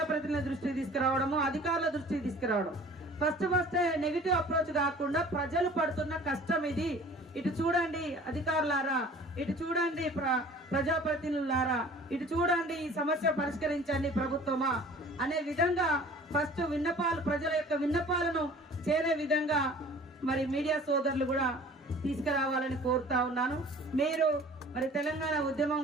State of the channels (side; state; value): both; normal; correlation 0.47